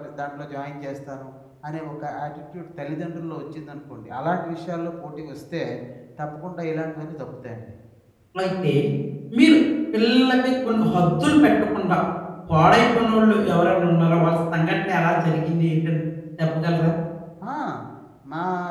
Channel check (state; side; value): identical; both; correlation 1.00